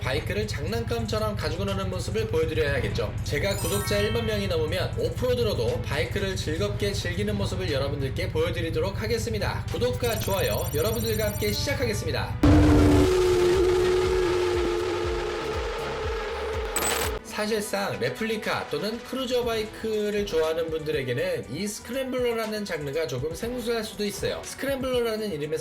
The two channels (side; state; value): both; identical; correlation 1.00